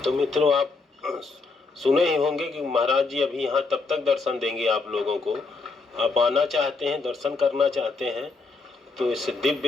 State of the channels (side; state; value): right; quieter; 4.0 dB